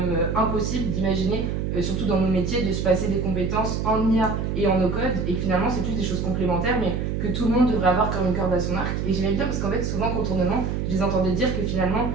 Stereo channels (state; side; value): noise; right; hum, 1 dB below the sound